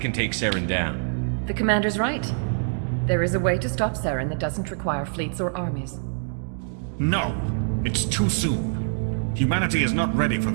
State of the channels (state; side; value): silent; left; digital silence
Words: take Saren down. The Commander's right. There is a way to stop Saren that doesn't require fleets or armies. No, it's too soon. Humanity is not ready for